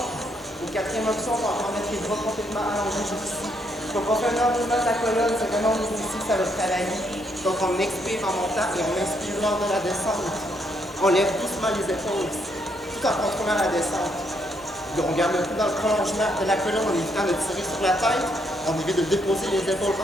Et quatrième option, on va encore mettre les bras complètement allongés jusqu'ici. Donc, on fait un enroulement de la colonne, c'est vraiment au niveau ici que ça va travailler. Donc, on expire en montant et on inspire lors de la descente. On lève doucement les épaules, tout en contrôlant la descente. On garde le coup dans le prolongement de la colonne en évitant de tirer sur la tête. On évite de déposer les épaules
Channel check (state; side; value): normal; both; correlation 0.74